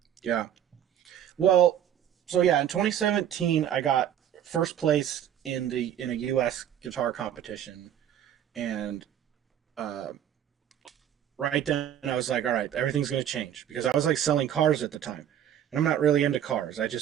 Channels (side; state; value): left; quieter; 10.1 dB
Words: Yeah. Well, so yeah, in 2017 I got first place in a US guitar competition, and uh, right then I was like, all right, everything's going to change, because I was like selling cars at the time. And I'm not really into cars. I